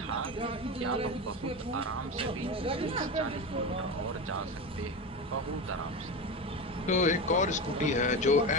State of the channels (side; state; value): both; normal; correlation 0.22